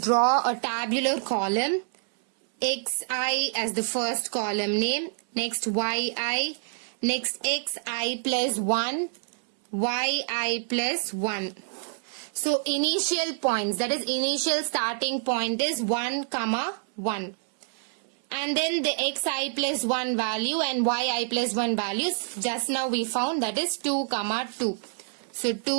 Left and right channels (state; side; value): silent; left; 60 dB below the other